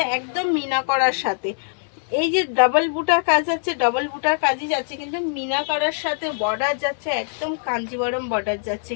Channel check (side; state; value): right; silent; digital silence